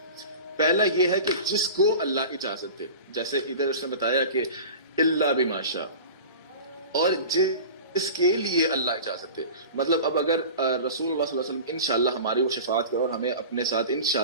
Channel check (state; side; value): inverted; both; correlation -0.35